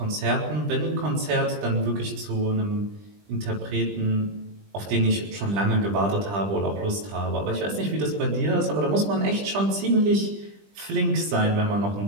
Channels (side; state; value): left; late; 20 ms